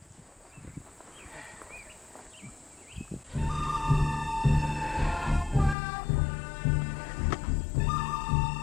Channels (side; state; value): right; drops out; at 5.8 s